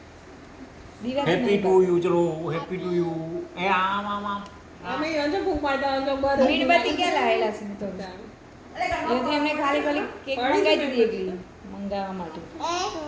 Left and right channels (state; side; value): identical; both; correlation 1.00